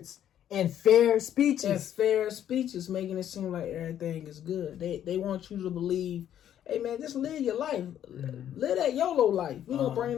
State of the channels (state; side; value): quieter; right; 10.6 dB